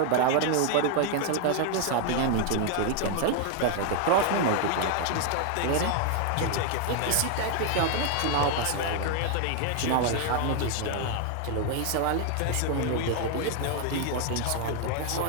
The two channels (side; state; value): both; different; correlation 0.00